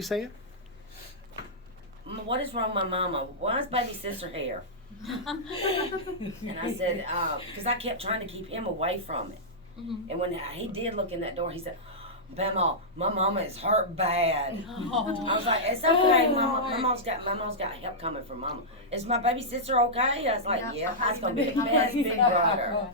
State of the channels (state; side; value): normal; both; correlation -0.11